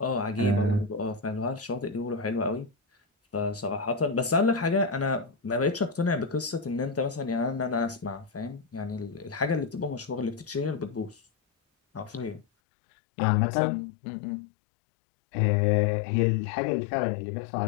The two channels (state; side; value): drops out; right; at 12.5 s